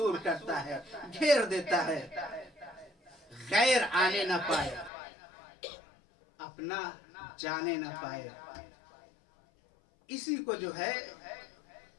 کرتا ہے، گھیر دیتا ہے. غیر آنے نہ پائے، اپنا جانے نہ پائے. اسی کو جو ہے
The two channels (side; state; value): right; drops out; at 4.9 s